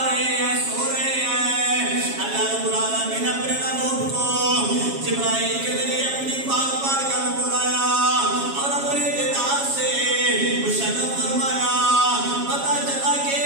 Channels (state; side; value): late; left; 7.3 ms